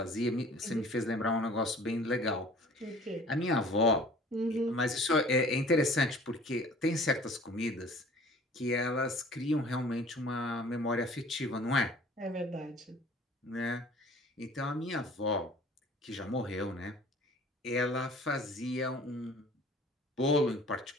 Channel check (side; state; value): both; normal; correlation 0.49